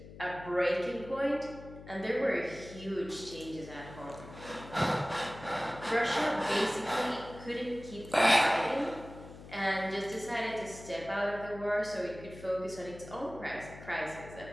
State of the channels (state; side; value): noise; left; hum, 16 dB below the sound